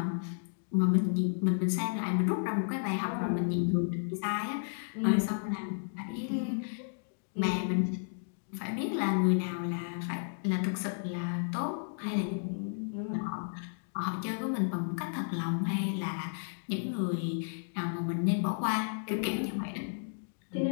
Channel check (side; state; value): right; silent; digital silence